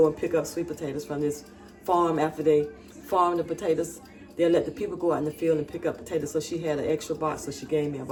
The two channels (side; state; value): both; identical; correlation 1.00